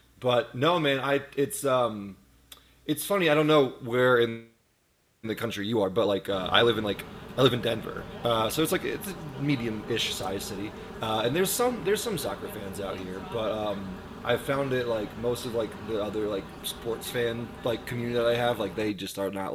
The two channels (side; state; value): both; identical; correlation 1.00